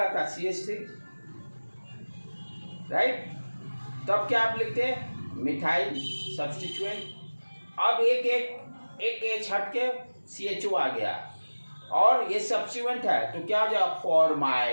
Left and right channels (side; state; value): both; inverted; correlation -1.00